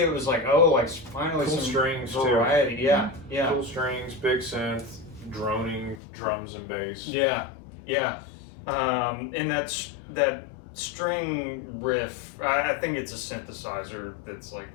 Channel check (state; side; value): drops out; right; at 6.0 s